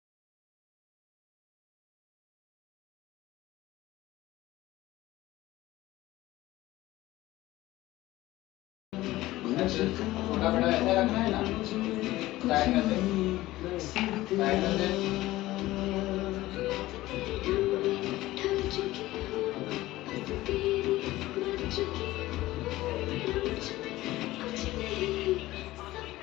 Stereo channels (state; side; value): quieter; right; 17.1 dB